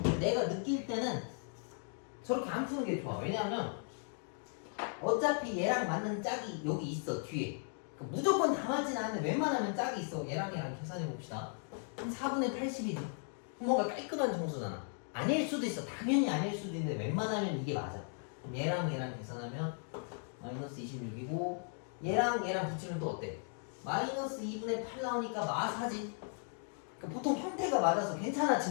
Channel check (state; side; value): silent; right; 53 dB below the other